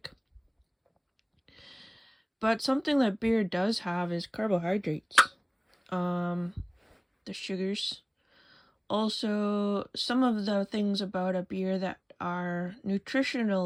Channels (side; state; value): both; identical; correlation 1.00